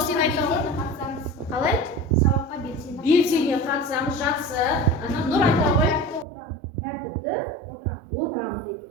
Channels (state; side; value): drops out; left; at 6.2 s